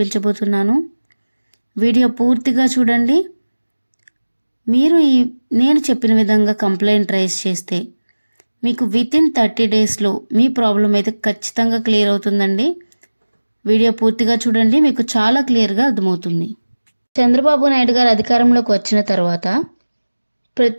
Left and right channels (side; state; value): both; inverted; correlation -1.00